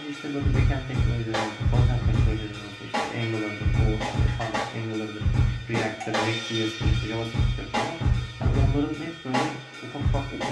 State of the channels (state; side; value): identical; both; correlation 1.00